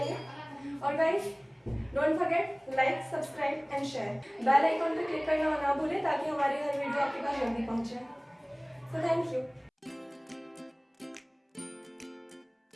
और guys don't forget like, subscribe and share, bell icon पे क्लिक करना ना भूलें ताकि हमारी हर वीडियो आपके पास जल्दी पहुंचे। So thank you.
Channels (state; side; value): identical; both; correlation 1.00